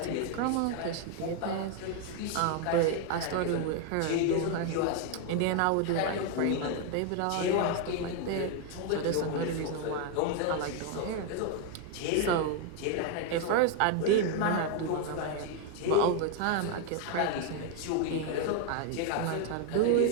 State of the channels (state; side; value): different; both; correlation 0.01